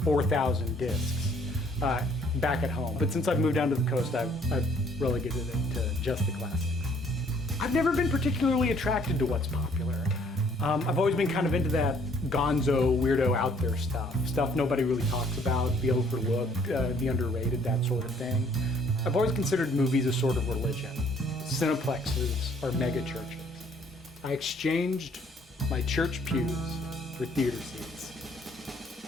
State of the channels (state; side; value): normal; both; correlation 0.62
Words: 4,000 discs back at home. But since I've moved down to the coast, I've relegated it to just the classics. I've never been particularly attracted to what's popular. I've always been kind of into that gonzo, weirdo, out there stuff nobody really talks about, the overlooked, the underrated, that sort of thing. I've always considered movies a sort of religion. Cineplexes are mega churches. I exchanged my church pews for theater seats.